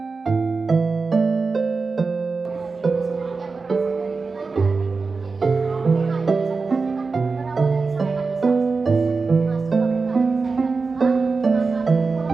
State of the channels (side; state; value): left; quieter; 4.3 dB